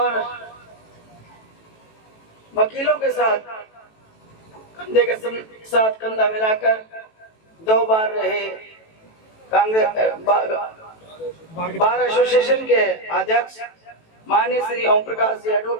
वकीलों के साथ कंधे के साथ कंधा मिलाकर 2 बार रहे कांग्रेस बार एसोसिएशन के अध्यक्ष माननीय श्री ओम प्रकाश जी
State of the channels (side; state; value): right; late; 18 ms